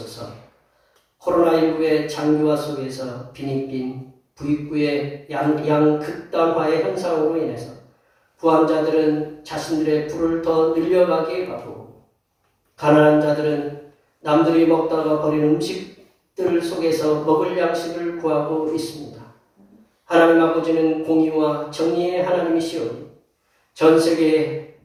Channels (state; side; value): identical; both; correlation 1.00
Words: 코로나19의 장기화 속에서 빈익빈 부익부의 양극단화의 현상으로 인해서 부한자들은 자신들의 부를 더 늘려가게 하고, 가난한 자들은 남들이 먹다가 버린 음식들 속에서 먹을 양식을 구하고 있습니다. 하나님 아버지는 공의와 정의의 하나님이시오니 전 세계